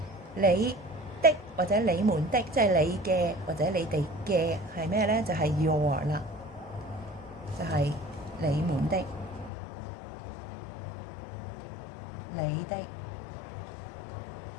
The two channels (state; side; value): drops out; right; at 9.5 s